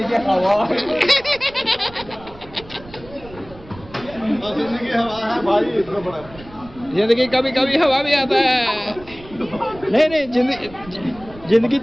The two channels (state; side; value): noise; right; rumble, 19 dB below the sound